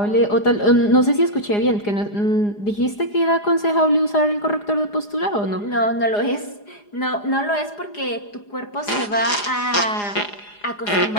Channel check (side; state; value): right; late; 4.9 ms